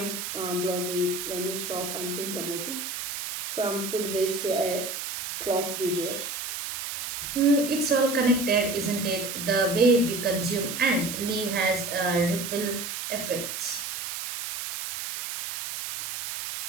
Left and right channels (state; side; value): noise; right; hiss, 5 dB below the sound